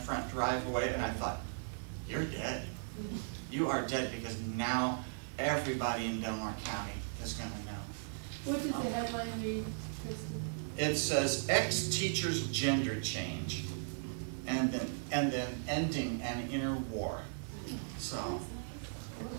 driveway and I thought, you're dead. You are dead because now everybody in Delmar County is going to know. What does the headline read, Christie? It says, ex-teacher's gender change. And then ending an inner war. So,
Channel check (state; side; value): silent; left; 53 dB below the other